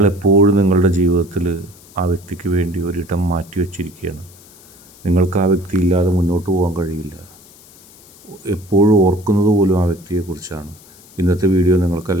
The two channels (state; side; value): noise; left; hiss, 24 dB below the sound